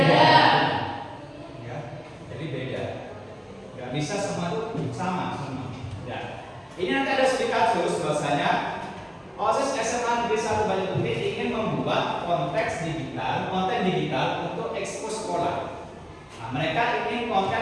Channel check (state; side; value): identical; both; correlation 1.00